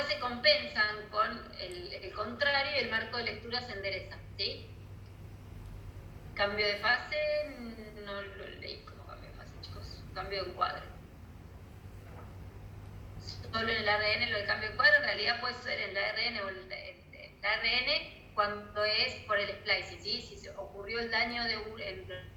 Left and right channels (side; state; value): both; identical; correlation 1.00